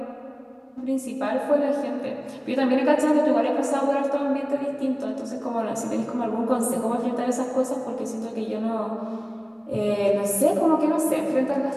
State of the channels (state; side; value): identical; both; correlation 1.00